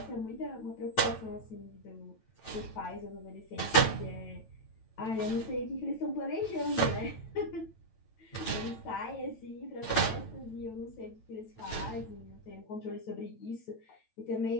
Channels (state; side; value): late; right; 9.1 ms